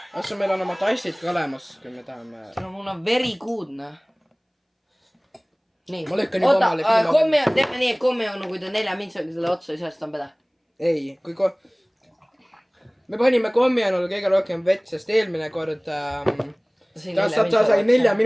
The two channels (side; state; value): both; identical; correlation 1.00